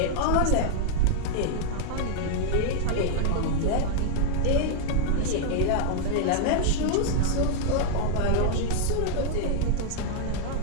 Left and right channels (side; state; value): both; different; correlation 0.00